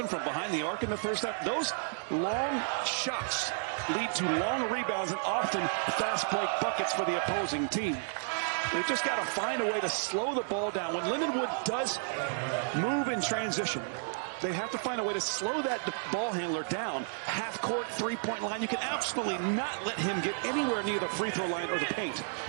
from behind the arc in the first half. Those long shots lead to long rebounds and often fast break buckets for the opposing team. They've just got to find a way to slow the ball down. When Lindenwood does move in transition, they have to find a way to slow that ball handler down. Half court, 3-point line. You can absolutely not let him get anywhere near the free throw line or the paint.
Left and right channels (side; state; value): left; silent; digital silence